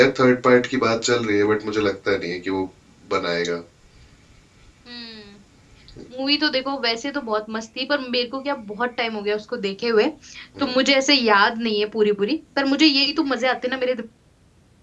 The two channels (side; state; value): both; identical; correlation 1.00